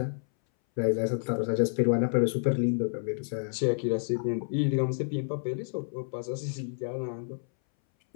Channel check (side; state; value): right; silent; 58 dB below the other